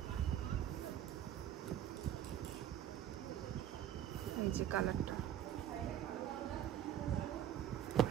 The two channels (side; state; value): left; quieter; 10.8 dB